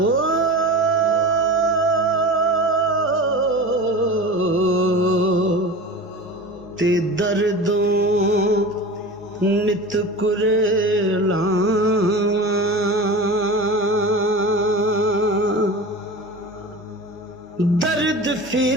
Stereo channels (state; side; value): normal; both; correlation 0.32